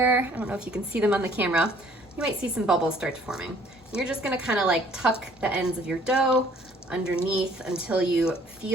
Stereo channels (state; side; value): normal; both; correlation 0.58